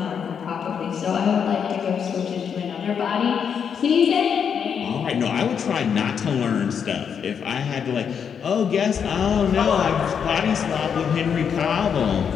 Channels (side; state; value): right; quieter; 7.3 dB